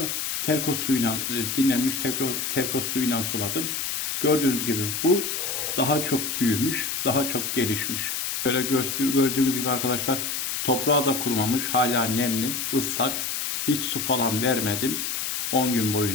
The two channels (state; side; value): noise; left; hiss, 2 dB below the sound